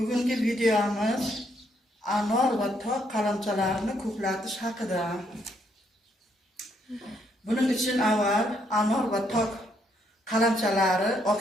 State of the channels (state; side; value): normal; both; correlation 0.73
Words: videomiz anor va tok qalamchalarini ko'klatish haqida. Buning uchun avval anor va tok qalamchalari